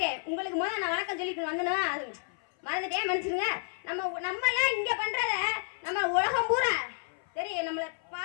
உங்களுக்கு முதல்ல நான் வணக்கம் சொல்லிக்கணும் வந்தனா, அது மறந்துட்டேன், மனுஷருங்க. நம்ம எல்லாம் இங்க பண்றத நம்ம உலகம் பூரா தெரியும். நம்மள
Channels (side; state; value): right; silent; 55 dB below the other